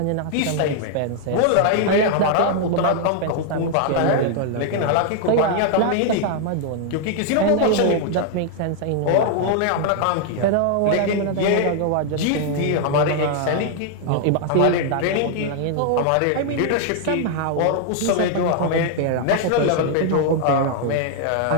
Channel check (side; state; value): both; different; correlation 0.00